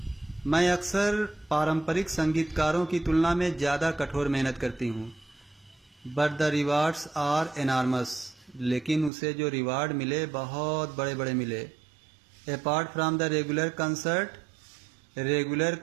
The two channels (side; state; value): left; drops out; at 9.1 s